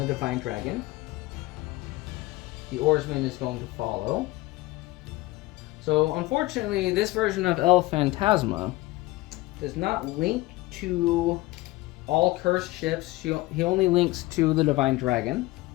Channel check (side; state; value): right; quieter; 19.3 dB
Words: Divine Dragon. The oarsman is going to follow. So unfortunately, this version of El Fantasma does not link to all cursed ships. He only links to the Divine Dragon.